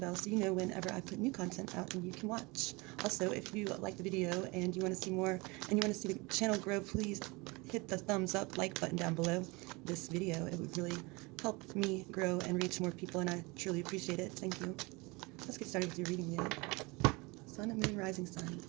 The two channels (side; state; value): left; quieter; 25.9 dB